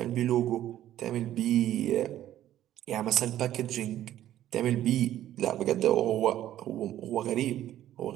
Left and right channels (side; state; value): left; quieter; 12.6 dB